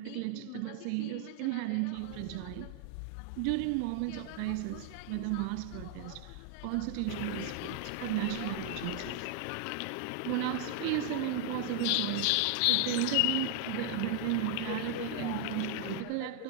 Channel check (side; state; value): both; different; correlation 0.00